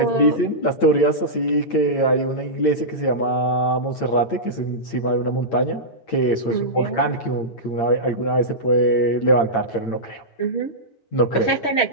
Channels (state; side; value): late; right; 8.8 ms